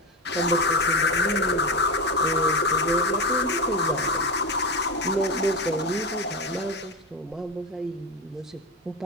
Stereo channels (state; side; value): normal; both; correlation 0.17